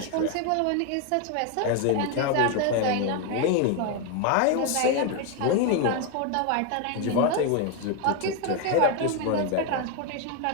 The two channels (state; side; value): different; both; correlation 0.01